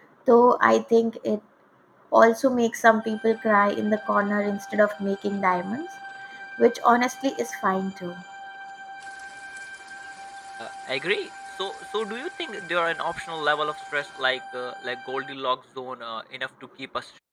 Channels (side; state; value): both; identical; correlation 1.00